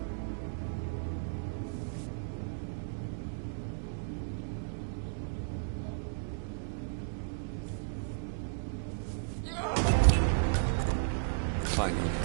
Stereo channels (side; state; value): left; silent; digital silence